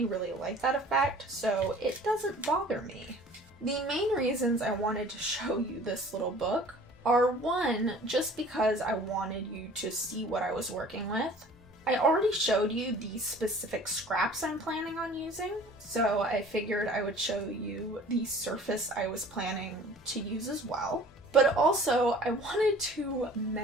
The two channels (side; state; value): both; normal; correlation 0.48